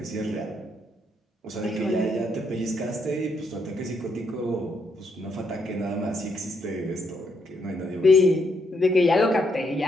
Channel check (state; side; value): normal; both; correlation 0.76